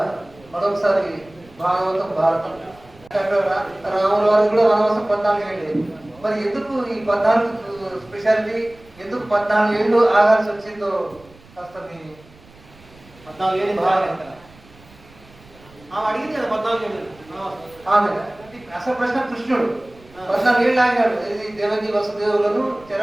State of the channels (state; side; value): noise; right; rumble, 25 dB below the sound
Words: మరొకసారి భాగవతం భారతం రాముల వారికి కూడా వనవాసం 14 ఏళ్ళు. మరి ఎందుకు ఈ 14 స్పెషాలిటీ, ఎందుకు 14 ఏళ్ళు ఆగాల్సి వచ్చిందో కాస్త మీ 14 ఏళ్ళు ఆమె అడిగింది కదా 14 ఏళ్ళు ఆమె అసలు ప్రశ్న కృష్ణుడు 14 ఏళ్ళు ఆగాడు ఇది దేవకి వసుదేవులను చెర